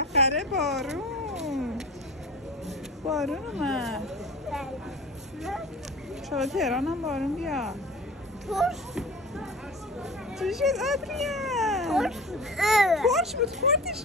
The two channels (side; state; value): both; normal; correlation 0.37